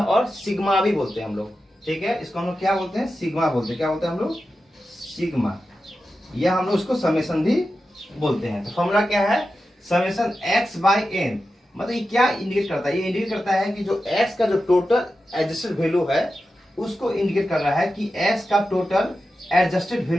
और सिग्मा भी बोलते हैं हम लोग। ठीक है, इसको हम लोग क्या बोलते हैं, सिग्मा बोलते हैं। क्या बोलते हैं हम लोग, सिग्मा, या हम लोग उसको समेशन भी बोलते हैं। तो फॉर्मूला क्या है, समेशन x बाई n, मतलब ये क्या इंडिकेट करता है, ये इंडिकेट करता है कि जो x का जो टोटल एडजस्टेड वैल्यू है उसको इंडिकेट कर रहा है कि x का टोटल एडजस्टेड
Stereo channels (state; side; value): normal; both; correlation 0.91